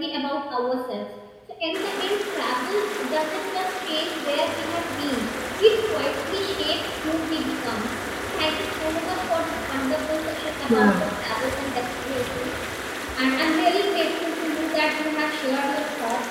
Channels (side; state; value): both; identical; correlation 1.00